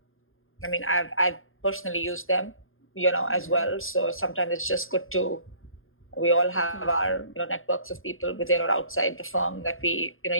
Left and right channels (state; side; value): late; right; 0.60 ms